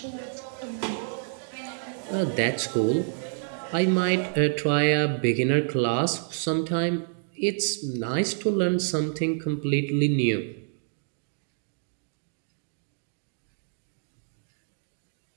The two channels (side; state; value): left; silent; digital silence